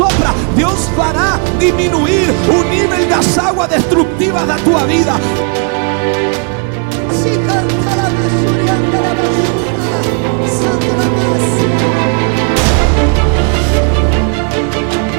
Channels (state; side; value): quieter; left; 38.1 dB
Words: Deus fará diminuir o nível das águas destrutivas da tua vida. Se canta la basura, anda la basura, santa la massa.